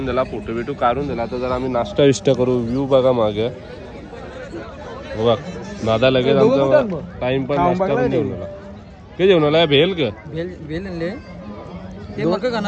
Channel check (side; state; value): both; identical; correlation 1.00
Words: दिला फोटो बिटो काढून दिला आता जरा आम्ही नाश्ता विष्टा करू व्ह्यू बघा मागे बघ दादा लगेच आमचा टाइम पण नाश्ता पण जेवण आला काय जेवण आला भेल का भेल आणले ते मग